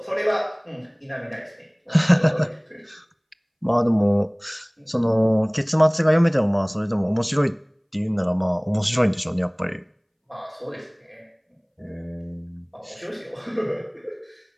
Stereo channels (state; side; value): identical; both; correlation 1.00